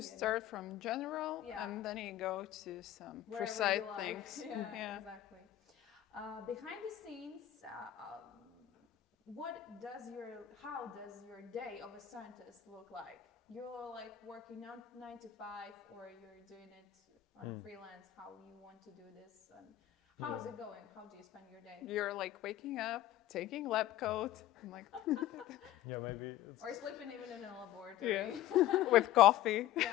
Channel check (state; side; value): quieter; right; 13.2 dB